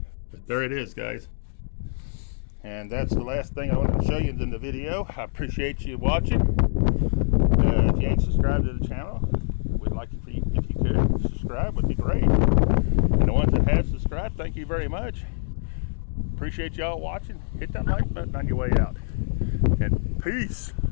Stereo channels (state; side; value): silent; right; digital silence